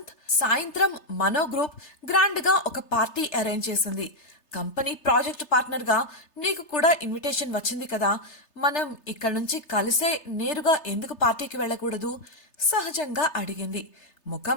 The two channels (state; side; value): late; right; 3.3 ms